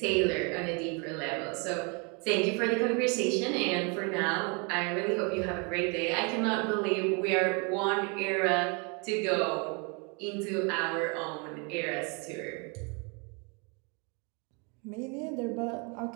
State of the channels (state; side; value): quieter; left; 33.3 dB